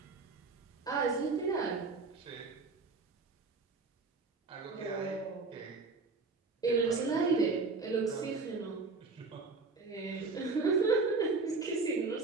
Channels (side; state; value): left; quieter; 4.0 dB